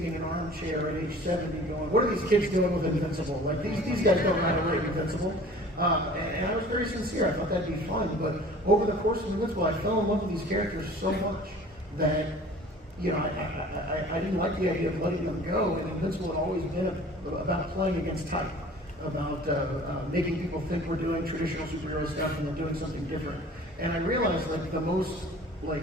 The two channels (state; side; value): normal; both; correlation 0.46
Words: in an armchair at age 70 going, what are these kids doing with Invincible? Like, these guys don't know how to write Invincible. And I was very sincere. I thought that'd be fun. But over the course of Invincible, I fell in love with these characters so much that, I didn't like the idea of letting them go. And Invincible had always been about playing against type, about making people think we're doing traditional superhero stuff and then doing something different. And I realized that the most,